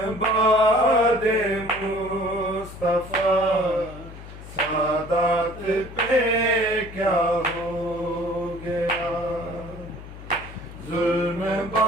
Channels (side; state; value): left; noise; hum, 15 dB below the sound